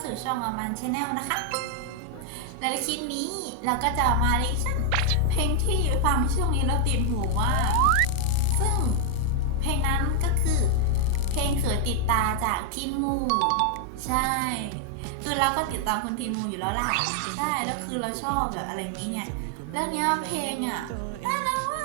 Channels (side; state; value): both; different; correlation 0.00